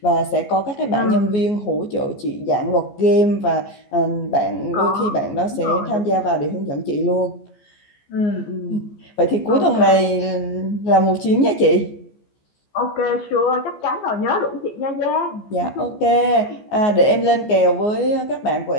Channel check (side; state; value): right; late; 14 ms